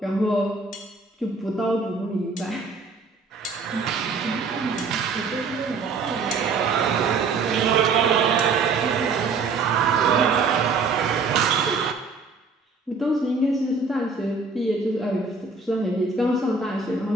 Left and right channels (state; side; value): quieter; left; 4.4 dB